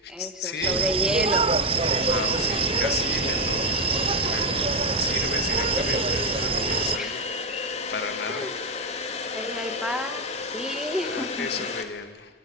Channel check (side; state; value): both; normal; correlation 0.06